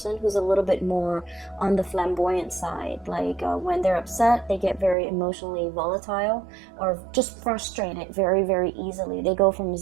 who's a little bit more on the flamboyant side. Like when they're upset, they get very emotionally volatile or just frustrated very, very easily. They go from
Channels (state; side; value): drops out; left; at 5.0 s